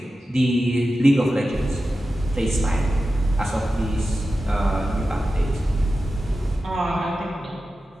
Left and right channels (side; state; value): both; normal; correlation 0.93